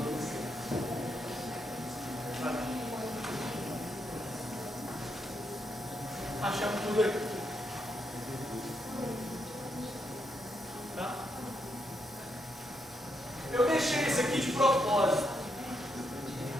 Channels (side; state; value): both; normal; correlation 0.80